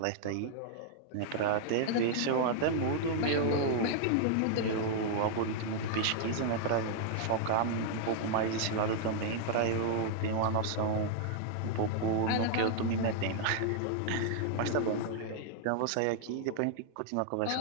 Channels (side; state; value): both; different; correlation -0.01